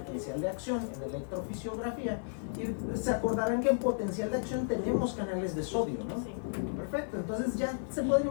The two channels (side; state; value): right; silent; digital silence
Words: de acción, en electrofisiografía. Y se acordarán que en potencial de acción tenemos canales de sodio, ¿no? Perfecto, entonces ya se puede